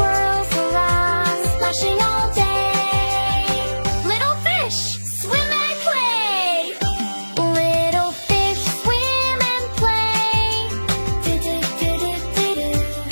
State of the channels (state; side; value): inverted; both; correlation -1.00